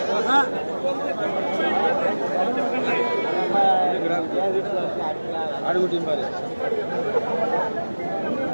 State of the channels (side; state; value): both; inverted; correlation -1.00